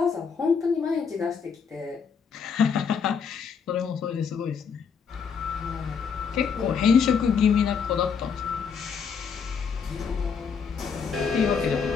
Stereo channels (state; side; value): quieter; right; 6.3 dB